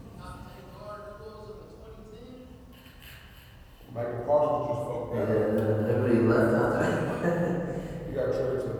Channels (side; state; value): both; identical; correlation 1.00